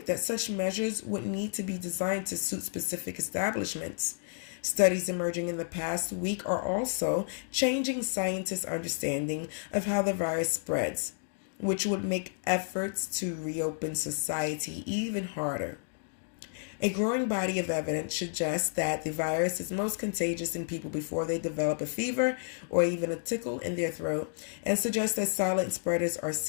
that such measures would need to be designed to suit specific establishments. Studies emerging in the past week are also changing scientists' understanding of how the virus spreads, which would make efforts to reopen society even harder. A growing body of evidence suggests that the virus is most contagious in people before they develop a fever or even a tickle in their throat, and suggests that silent spreaders are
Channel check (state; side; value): silent; right; digital silence